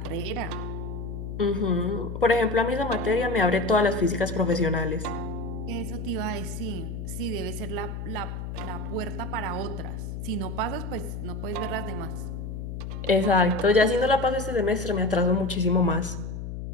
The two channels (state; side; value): noise; left; hum, 6 dB below the sound